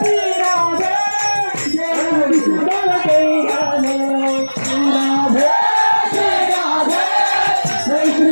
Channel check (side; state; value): both; inverted; correlation -1.00